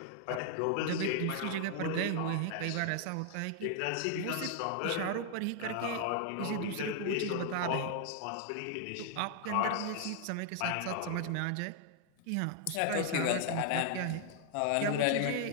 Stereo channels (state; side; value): different; both; correlation 0.00